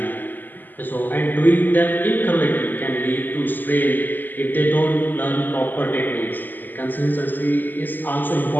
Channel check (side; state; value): right; late; 0.088 ms